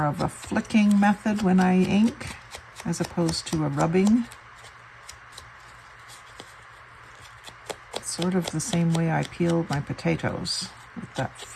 of a flicking method when I ink as opposed to a rubbing. It's sort of the same way I peel my potatoes, with that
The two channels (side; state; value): both; identical; correlation 1.00